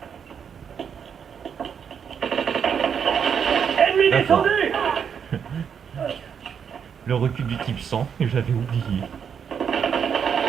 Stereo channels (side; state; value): left; quieter; 7.4 dB